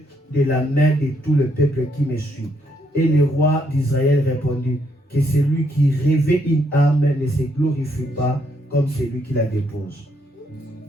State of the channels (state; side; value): normal; both; correlation 0.74